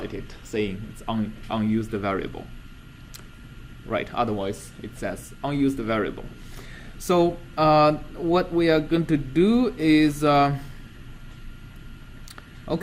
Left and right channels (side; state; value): both; identical; correlation 1.00